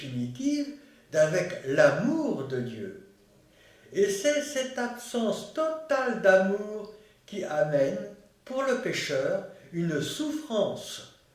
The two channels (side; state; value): both; identical; correlation 1.00